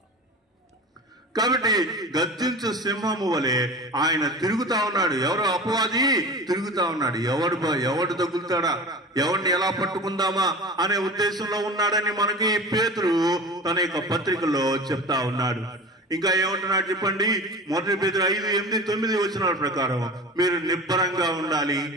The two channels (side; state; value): both; normal; correlation 0.35